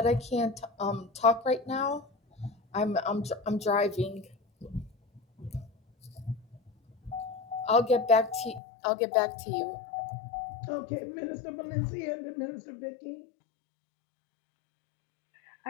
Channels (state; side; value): drops out; right; at 8.6 s